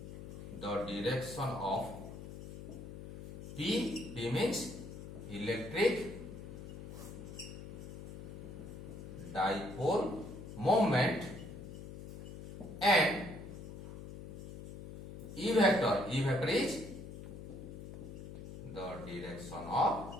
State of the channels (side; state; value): left; noise; hum, 11 dB below the sound